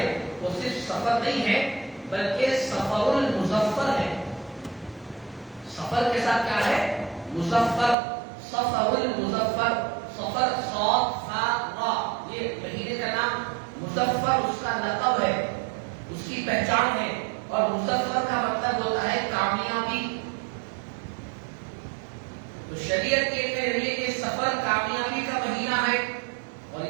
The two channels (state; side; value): drops out; left; at 8.0 s